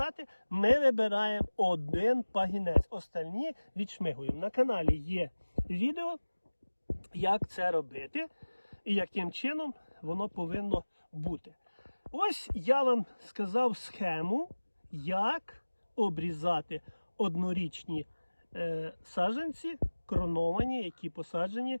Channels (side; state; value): both; inverted; correlation -1.00